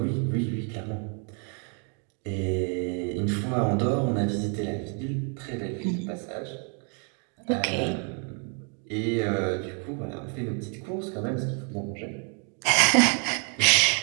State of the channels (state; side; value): quieter; left; 39.2 dB